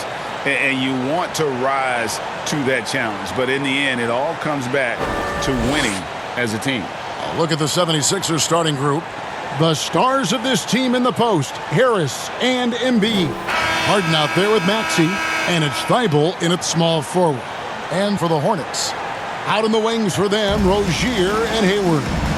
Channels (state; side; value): identical; both; correlation 1.00